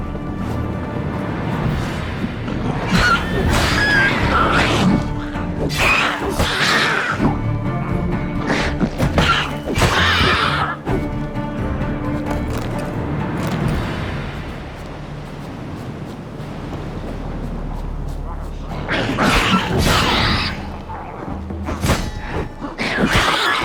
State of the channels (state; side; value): identical; both; correlation 1.00